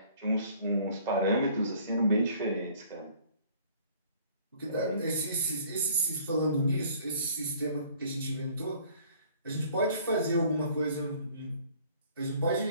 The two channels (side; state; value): both; inverted; correlation -0.55